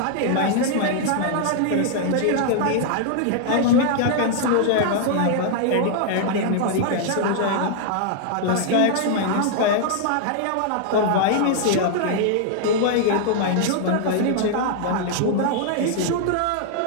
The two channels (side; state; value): both; different; correlation -0.01